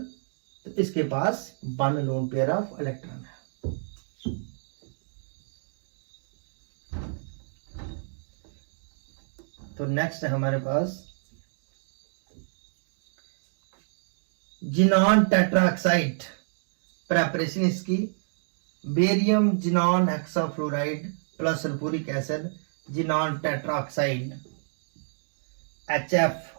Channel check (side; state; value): left; silent; digital silence